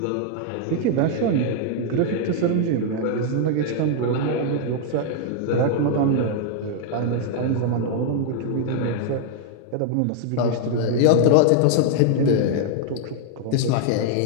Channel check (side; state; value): both; different; correlation 0.00